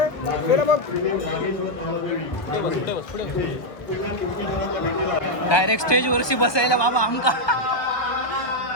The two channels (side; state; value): right; late; 1.2 ms